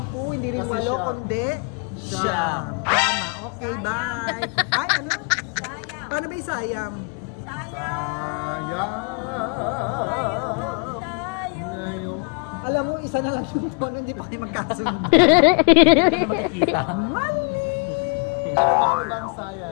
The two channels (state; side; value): quieter; right; 36.9 dB